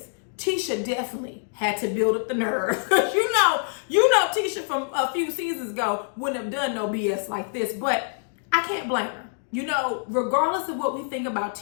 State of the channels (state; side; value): silent; right; digital silence